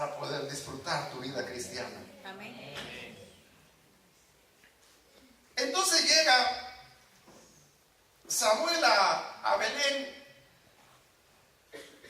poder disfrutar tu vida cristiana. Amén. Entonces llega Samuel a Belén,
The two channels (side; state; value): both; identical; correlation 1.00